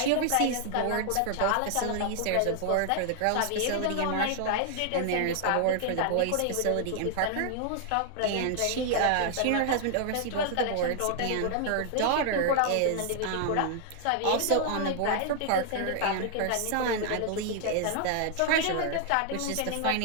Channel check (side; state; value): both; different; correlation 0.00